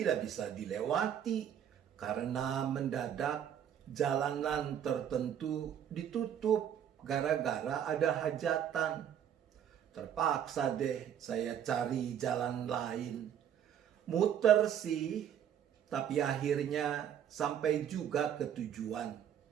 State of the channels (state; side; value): quieter; left; 9.4 dB